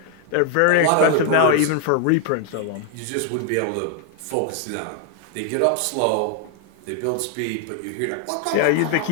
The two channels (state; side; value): different; both; correlation 0.00